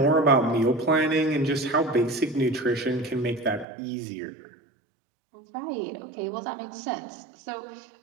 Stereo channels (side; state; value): left; drops out; at 3.7 s